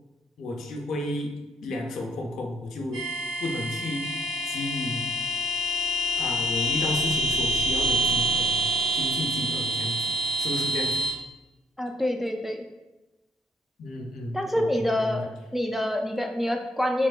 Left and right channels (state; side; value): normal; both; correlation 0.66